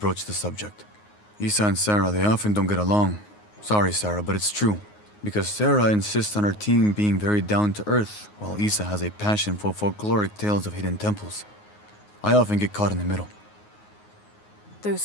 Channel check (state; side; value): late; right; 9.5 ms